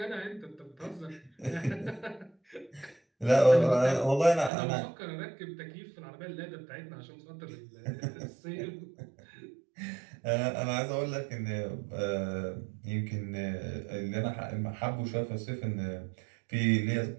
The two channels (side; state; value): left; drops out; at 4.5 s